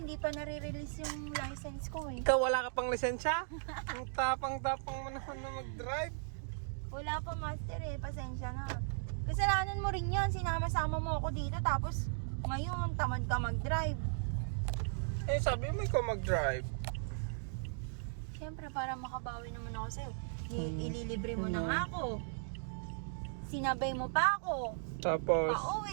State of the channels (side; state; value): left; silent; digital silence